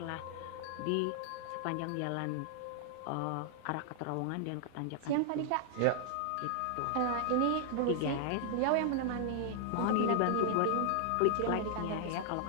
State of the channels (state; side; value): different; both; correlation 0.00